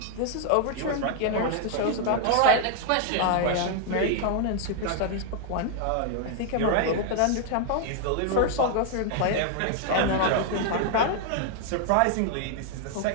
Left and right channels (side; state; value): both; different; correlation 0.00